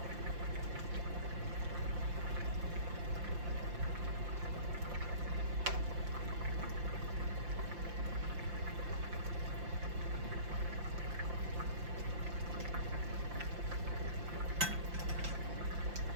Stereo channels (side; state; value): left; late; 5.7 ms